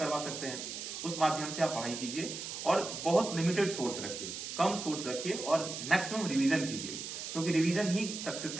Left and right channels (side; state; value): right; noise; hiss, 7 dB below the sound